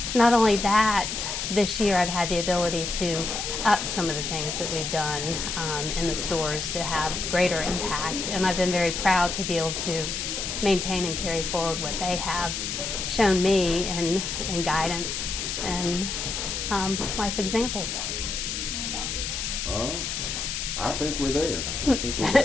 not only that, this year I've had the ability to up some of the things that we've done in the stores to have greater impact, and I've been very proud to be able to maintain and carry forward what they have shown me in guidance and life examples. All right. I think we're there.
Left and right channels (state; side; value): noise; left; hiss, 3 dB below the sound